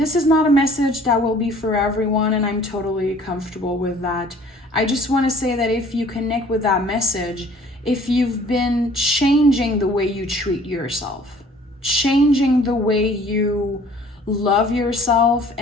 is not a message that will be for everyone, and I'm totally comfortable with that. I just want to say that if you connect with that message, if you've been changing the way you treat yourself, changing the way you love yourself,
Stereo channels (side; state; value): both; normal; correlation 0.53